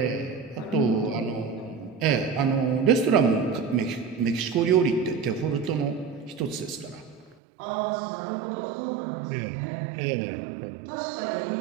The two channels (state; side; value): drops out; left; at 7.4 s